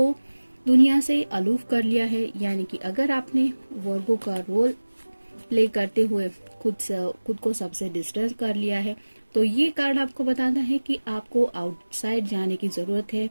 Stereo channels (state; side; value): inverted; both; correlation -1.00